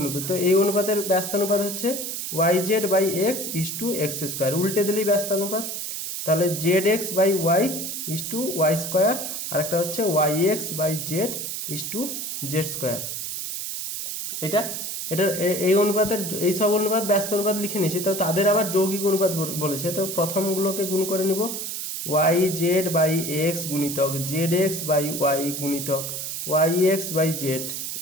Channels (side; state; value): right; noise; hiss, 5 dB below the sound